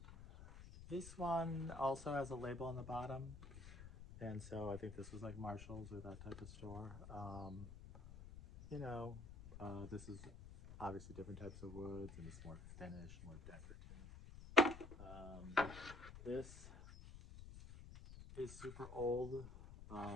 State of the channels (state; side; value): noise; left; rumble, 13 dB below the sound